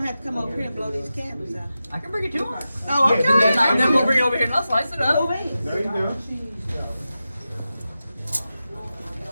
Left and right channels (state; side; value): inverted; both; correlation -0.92